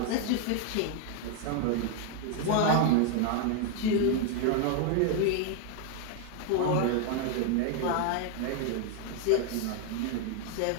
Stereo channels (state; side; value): different; both; correlation 0.01